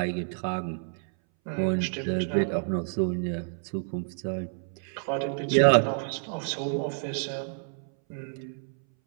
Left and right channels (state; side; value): silent; left; 59 dB below the other